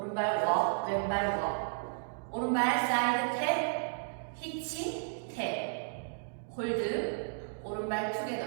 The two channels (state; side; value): silent; left; digital silence